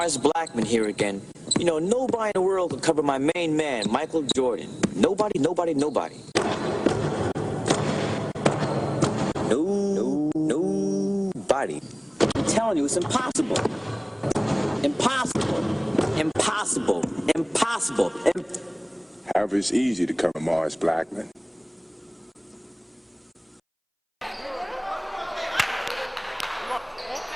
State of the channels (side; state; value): both; identical; correlation 1.00